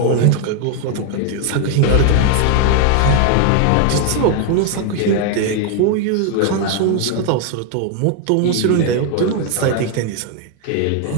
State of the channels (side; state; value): both; different; correlation 0.00